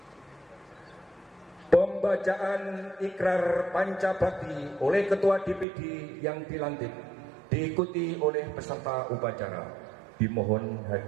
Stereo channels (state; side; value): drops out; left; at 5.7 s